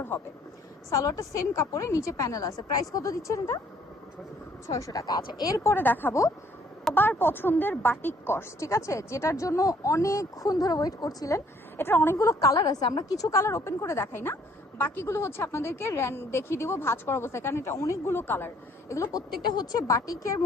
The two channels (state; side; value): normal; both; correlation 0.62